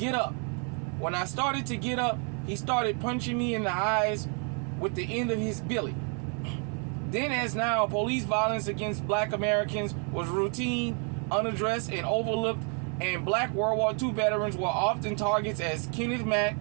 up." When I started to get up, he started punching me in the eyes with the end of his billy. Then as now, police violence against black Americans was routine, unaddressed, and overlooked, and black World War II veterans were often targets, as Kenneth Mack,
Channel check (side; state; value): left; quieter; 38.9 dB